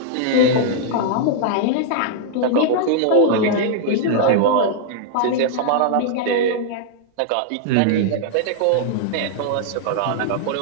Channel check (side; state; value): both; different; correlation -0.01